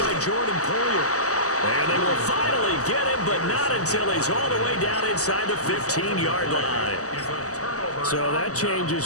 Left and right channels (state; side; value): late; right; 0.66 ms